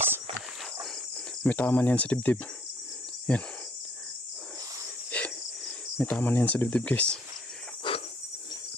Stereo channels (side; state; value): both; normal; correlation 0.63